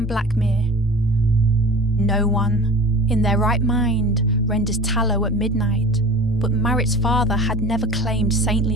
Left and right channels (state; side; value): normal; both; correlation 0.40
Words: Blackmere. No one, in their right mind, renders tallow at midnight, but Marit's father had never claimed